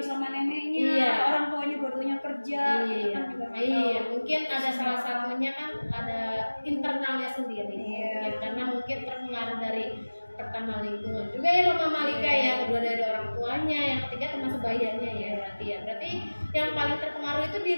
sama neneknya, iya. orang tuanya barunya kerja, itu kan juga nggak tahu. Iya, mungkin ada salah satunya kan ada internalnya sendiri. Iya. Ya, karena mungkin terpengaruh dari pertama lingkungan juga ya Mama Malika ya, kedua dari orang tuanya, yang ketiga termasuk bayarnya ya berarti ya. Berarti yang paling terpengaruh itu di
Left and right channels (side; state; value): both; inverted; correlation -1.00